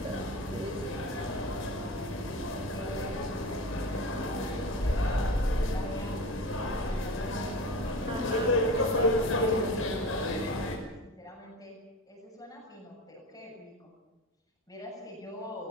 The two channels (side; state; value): both; normal; correlation 0.31